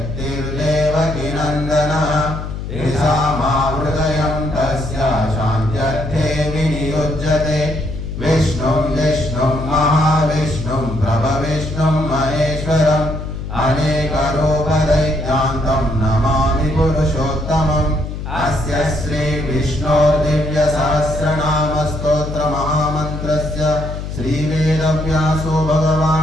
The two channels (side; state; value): left; noise; hum, 7 dB below the sound